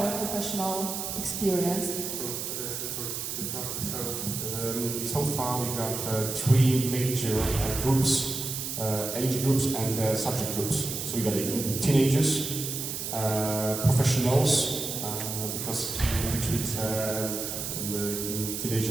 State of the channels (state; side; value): noise; right; hiss, 4 dB below the sound